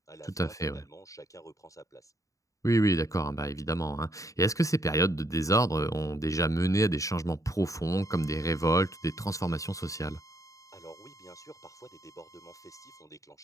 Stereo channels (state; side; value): late; right; 0.16 ms